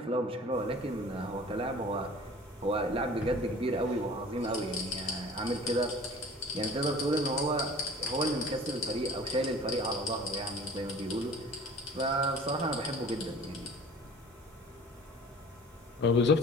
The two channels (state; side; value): normal; both; correlation 0.45